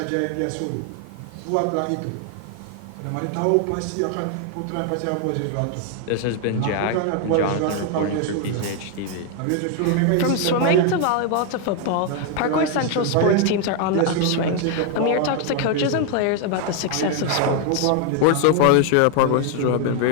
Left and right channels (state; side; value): different; both; correlation 0.00